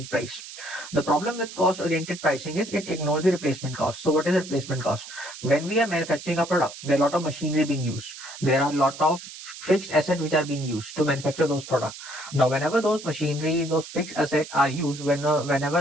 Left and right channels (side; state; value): right; noise; hiss, 13 dB below the sound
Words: price. The problem with cost oriented pricing is it ignores the replacement cost. So, what is the replacement cost? When we are manufacturing a product, there are a lot of machinery being used. There are a lot of fixed assets which are being used to manufacture those products. Now, whenever those machineries, those fixed assets are used, whenever